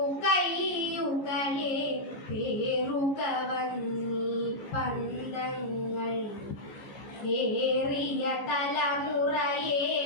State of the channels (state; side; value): late; right; 15 ms